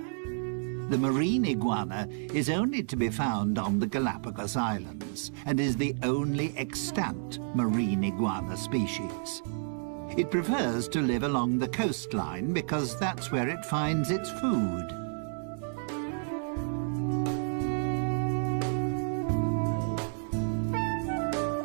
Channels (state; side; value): silent; left; 58 dB below the other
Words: The marine iguana is only to be found on the Galapagos Islands and is the only extant marine iguana species. It prefers to live along the coastline because that's where it finds its food.